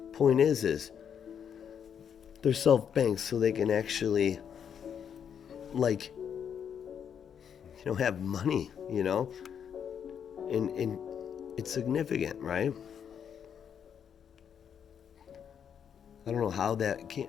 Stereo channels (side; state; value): right; quieter; 8.0 dB